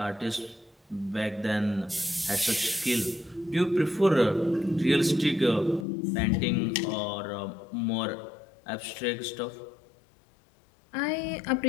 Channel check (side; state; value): right; drops out; at 5.9 s